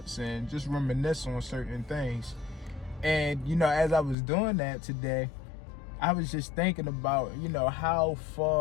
and just reminisce on certain things. And, as I was doing that today, I was just thinking about, how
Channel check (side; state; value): right; drops out; at 4.2 s